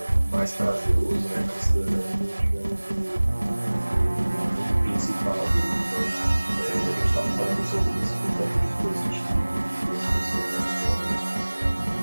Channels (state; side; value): inverted; both; correlation -1.00